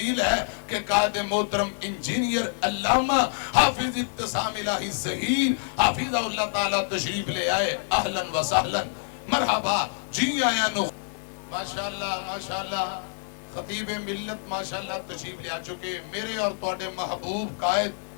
ہے کہ قائد محترم انجینئر علامہ حافظ ابتسام الہی ظہیر حافظ اللہ تعالی تشریف لے آئے اہلاً و سہلاً مرحبا جی آیا نو ماشاءاللہ خطیب ملت ماشاءاللہ تشریف لے آ چکے میرے اور توڑے محبوب قائد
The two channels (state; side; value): silent; right; 60 dB below the other